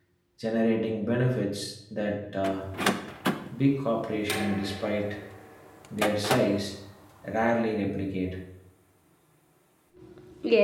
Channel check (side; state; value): both; identical; correlation 1.00